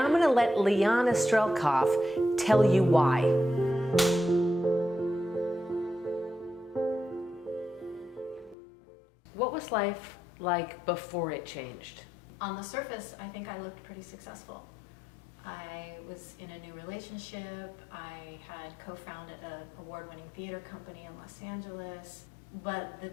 I'm going to let Lyena Strelkoff tell you why. What was life like before it changed? On the surface, I think I looked pretty successful. I was in a new relationship. I had co-founded an award-winning theater company in Los Angeles. But the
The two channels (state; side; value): drops out; right; at 8.6 s